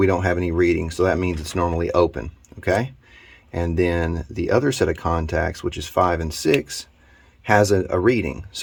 don't have any reading, so that means it's normally open, okay? And then the other set of contacts, which is 5 and 6, has a reading.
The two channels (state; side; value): identical; both; correlation 1.00